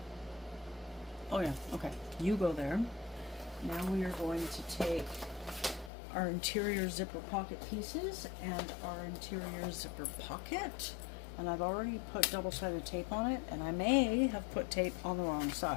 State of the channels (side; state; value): right; drops out; at 5.9 s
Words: Oh yeah, okay. You go there. Now we are going to take our interior zipper pocket pieces and our interior zipper pocket. And I've already put double-sided tape on it, and I may have put tape on the wrong